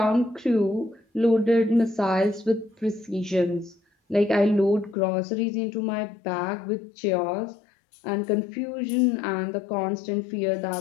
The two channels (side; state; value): right; drops out; at 5.0 s